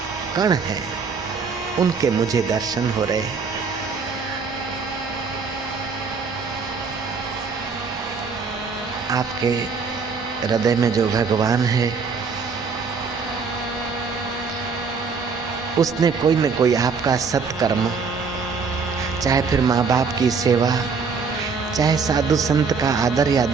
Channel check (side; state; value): left; quieter; 5.2 dB